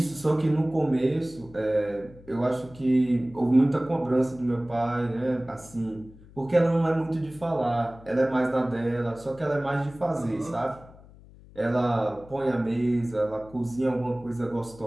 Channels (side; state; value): left; noise; hum, 22 dB below the sound